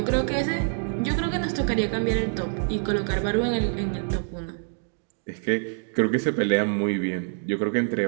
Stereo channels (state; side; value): silent; left; digital silence